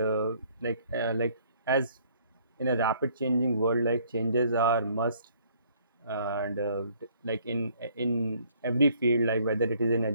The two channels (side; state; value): both; inverted; correlation -0.62